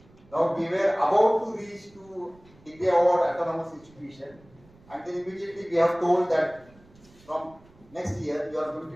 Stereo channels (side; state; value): right; noise; rumble, 27 dB below the sound